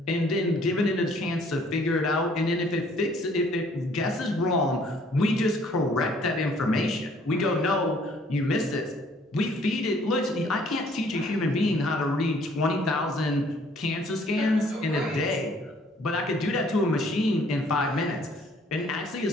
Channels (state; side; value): normal; both; correlation 0.60